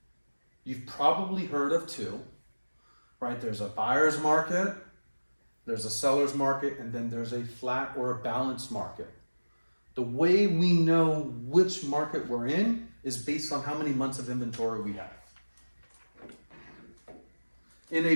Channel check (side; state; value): both; inverted; correlation -1.00